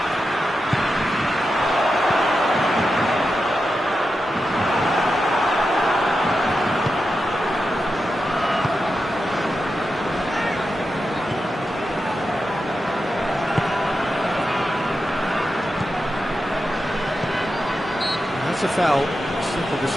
That's a foul. Simple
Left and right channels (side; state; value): both; normal; correlation 0.89